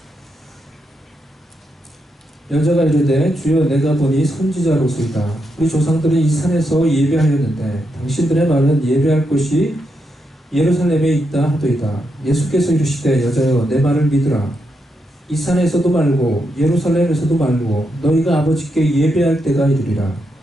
여자가 이르되 주여 내가 보니 선지자로소이다. 우리 조상들은 이 산에서 예배하였는데 당신들의 말은 예배할 곳이 예루살렘에 있다 하도이다. 예수께서 이르시되 여자여 내 말을 믿으라. 이 산에서도 말고 예루살렘에서도 말고 너희가 아버지께 예배할 때가 이르리라.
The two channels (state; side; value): normal; both; correlation 0.83